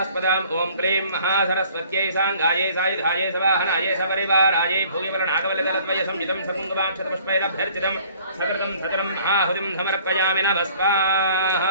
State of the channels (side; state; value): both; inverted; correlation -0.54